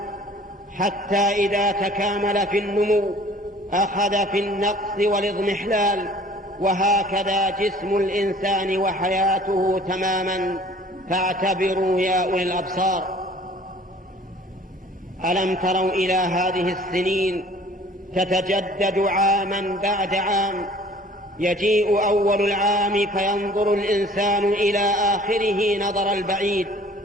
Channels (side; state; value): both; normal; correlation 0.51